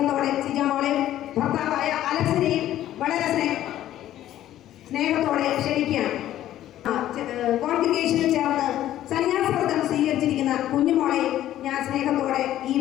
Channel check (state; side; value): quieter; right; 12.8 dB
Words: സിജാമോളെ ഭർത്താവായ അലക്സിനെയും വളരെ സ്നേഹത്തോടെ ക്ഷണിക്കുകയാണ്. കോൺഗ്രിഗേഷനിൽ ചേർന്ന് സന്യാസവ്രതം സ്വീകരിച്ചിരിക്കുന്ന കുഞ്ഞുമോളെ ഞാൻ സ്നേഹത്തോടെ ഈ